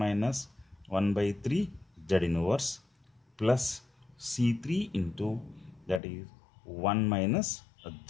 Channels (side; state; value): right; drops out; at 6.0 s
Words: 1 by 3 z inverse plus C3 into, that is 1 minus